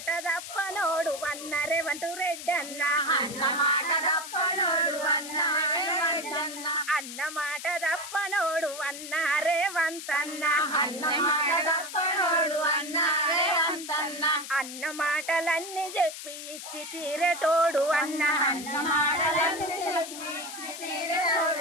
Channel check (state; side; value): noise; left; hiss, 10 dB below the sound